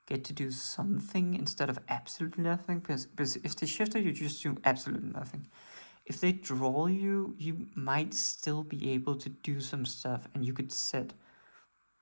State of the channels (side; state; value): both; inverted; correlation -1.00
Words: get to do something instead of absolutely nothing, because if they shifter you just do absolutely nothing. If they draw you, you might still be able to do some stuff, and you could set